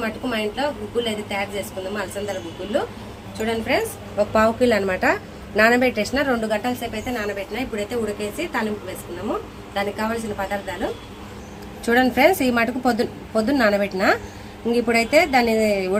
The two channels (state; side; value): identical; both; correlation 1.00